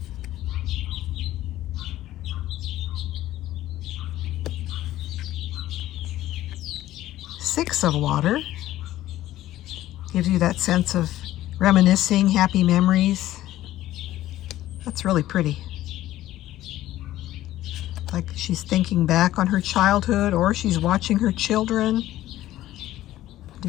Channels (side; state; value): right; quieter; 14.5 dB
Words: Six of Water. Gives you that sense of reminiscing, happy memories. That's really pretty. Like she's thinking back on her childhood, or she's watching her children,